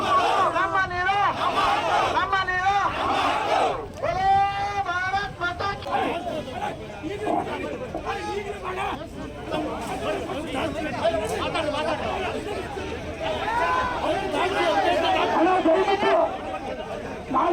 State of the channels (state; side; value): identical; both; correlation 1.00